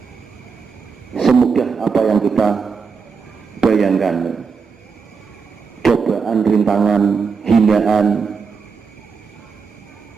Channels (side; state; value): left; quieter; 5.4 dB